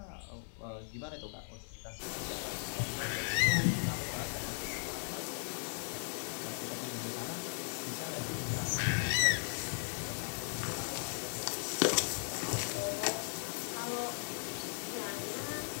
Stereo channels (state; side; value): silent; right; digital silence